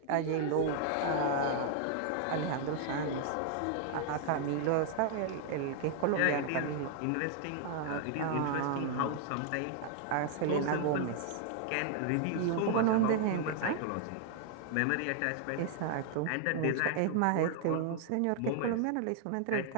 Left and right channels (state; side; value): different; both; correlation 0.00